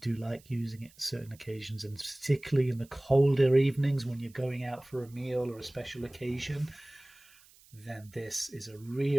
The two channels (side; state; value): right; noise; hiss, 26 dB below the sound